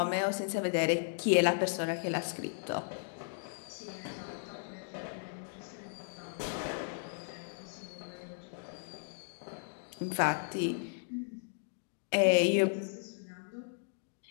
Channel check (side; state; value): right; silent; digital silence